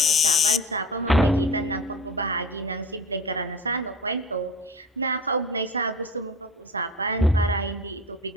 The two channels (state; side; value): normal; both; correlation 0.34